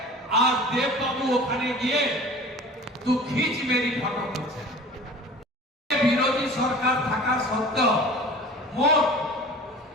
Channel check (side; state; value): both; normal; correlation 0.40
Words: আর দেববাবু ওখানে গিয়ে তু খিচ মেরি ফটো করছে। বিরোধী সরকার থাকা সত্ত্বেও মোট